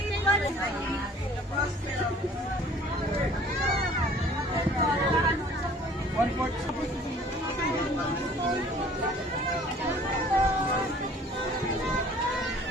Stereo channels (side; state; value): both; normal; correlation 0.52